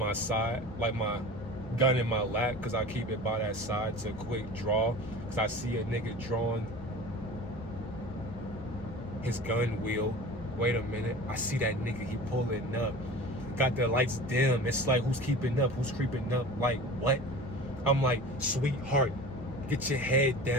side, like my gun in my lap because I keep it by that side to quick draw because I see a nigga drawing his gun wheel. Wait a minute, I see that nigga, he pulling up. Got the lights dim. It's like, who's keeping up? Who's creeping up? Like, what? I'm like, sweetheart, get your head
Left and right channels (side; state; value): both; normal; correlation 0.37